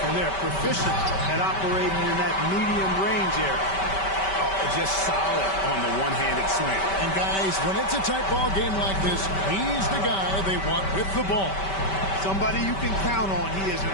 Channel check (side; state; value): right; late; 5.2 ms